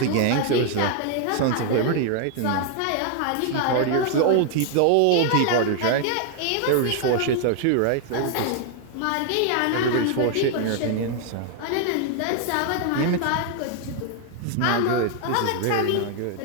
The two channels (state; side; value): different; both; correlation 0.00